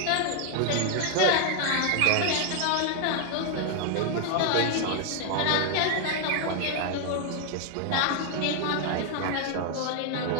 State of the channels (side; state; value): both; different; correlation 0.00